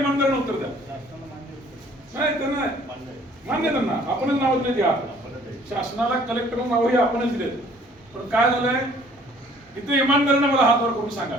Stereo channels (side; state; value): both; normal; correlation 0.57